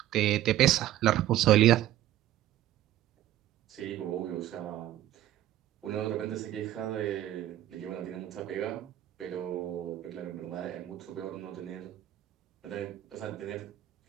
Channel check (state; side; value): quieter; left; 13.4 dB